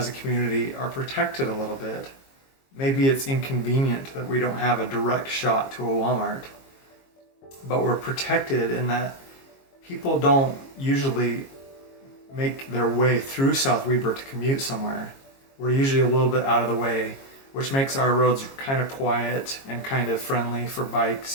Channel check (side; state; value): right; late; 22 ms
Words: a community are protected a little bit. Maybe it's inconvenient that we don't have a direct shot to a Walmart, but we're protected in that people don't usually make their way through South Weber to commute somewhere. We're usually a little bit out of the way, which makes our roads kind of quiet and kind of friendly for